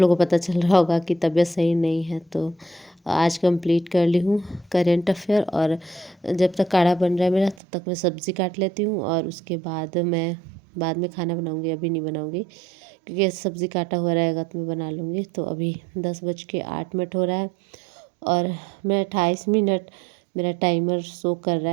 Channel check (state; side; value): drops out; left; at 7.6 s